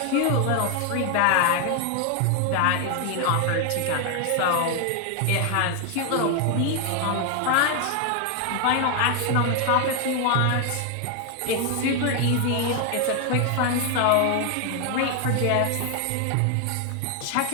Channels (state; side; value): different; both; correlation 0.01